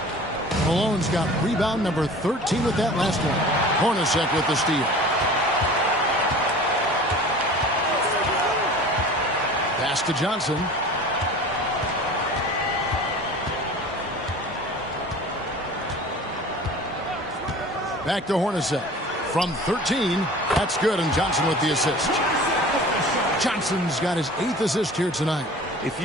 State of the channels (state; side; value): normal; both; correlation 0.41